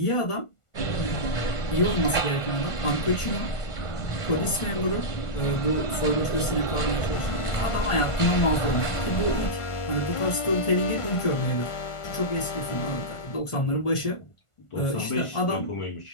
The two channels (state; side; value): late; right; 1.4 ms